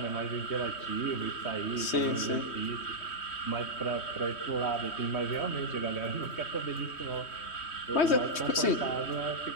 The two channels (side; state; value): right; late; 3.1 ms